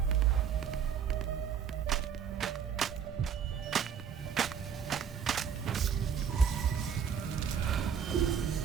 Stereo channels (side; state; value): left; quieter; 7.6 dB